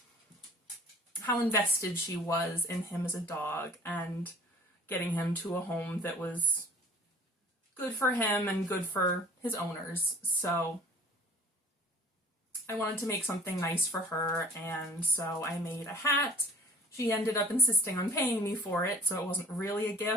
how invested she was in him as a dog and getting him to a home that was good for him and good for his owners. So I wanted to make something nice for her, and so I made a hat. She ended up insisting on paying me for it, so it wasn't really a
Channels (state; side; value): normal; both; correlation 0.48